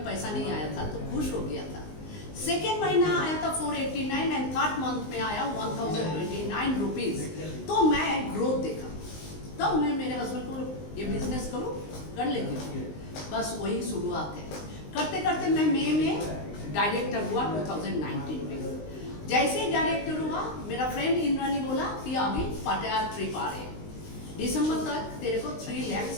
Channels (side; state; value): right; late; 19 ms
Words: पैसा नहीं आया था, तो खुश हो गया था। सेकेंड महीना आया था 489 एंड थर्ड मंथ में आया 1029 रुपीज। तो मैं ग्रोथ देखा, तब मैं मेरे हस्बैंड को ये बिजनेस करूँ, कर लेती हूँ। बस वही शुरुआत है। करते करते मैं मई में डायरेक्टर हुआ 2019 में। जैसे ही डायरेक्टर हुआ, मेरा फ्रेंड इंद्रानी बोला कि अभी पटियाला ट्रिप आ रहे, दिसंबर तक तेरे को 3 लाख